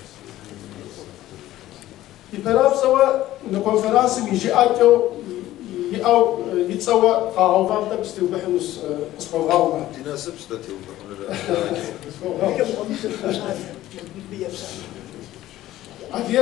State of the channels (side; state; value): right; quieter; 14.8 dB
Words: يبراب سوا نكونفرنس يجي أكو أو يتسوى قاعو فامتا بستيو بحنوس اسمه غاوما تناسب ستاتيو